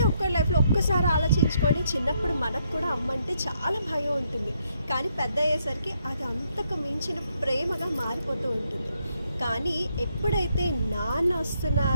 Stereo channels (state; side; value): inverted; both; correlation -0.75